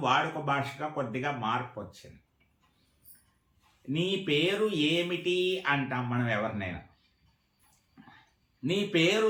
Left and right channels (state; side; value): identical; both; correlation 1.00